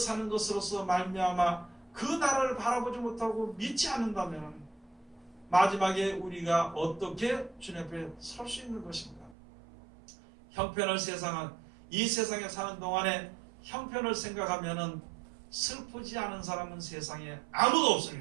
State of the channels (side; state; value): left; drops out; at 9.3 s